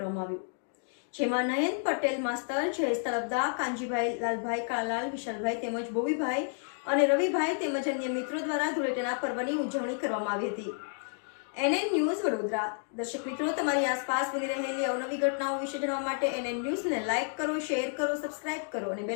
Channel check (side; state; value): right; silent; 57 dB below the other